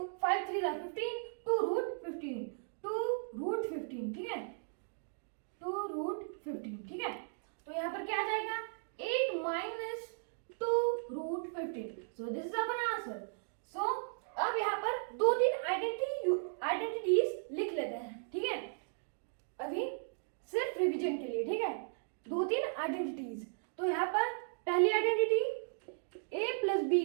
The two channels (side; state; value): left; silent; digital silence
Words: 5 3 15 2 √15 2 √15। ठीक है, 2 √15। ठीक है, तो यहाँ पर क्या आ जाएगा? 8 minus 2 √15। So this is our answer. So अब यहाँ पर 2-3 आइडेंटिटीज लिख लेते हैं। ठीक है, अभी सिर्फ रिवीजन के लिए। ठीक है, 2-3 आइडेंटिटीज। तो यहाँ पर पहली आइडेंटिटी a +